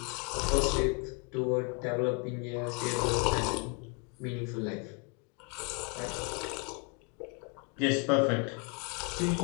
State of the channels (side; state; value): right; quieter; 33.7 dB